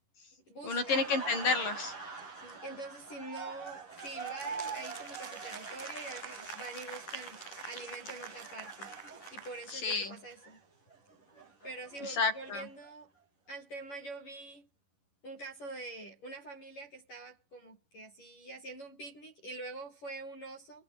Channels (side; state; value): right; late; 11 ms